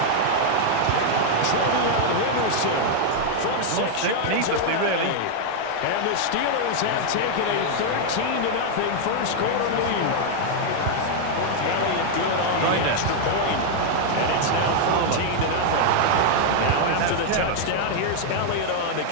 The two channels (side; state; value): both; different; correlation 0.00